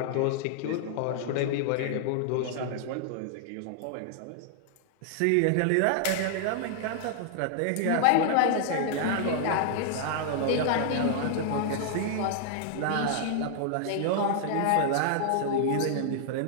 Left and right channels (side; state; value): both; different; correlation -0.01